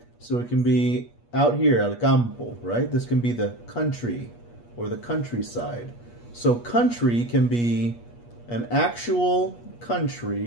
So it can be out here, el campo, right? This can be the country or the countryside. So country can be an actual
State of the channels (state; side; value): late; right; 8.4 ms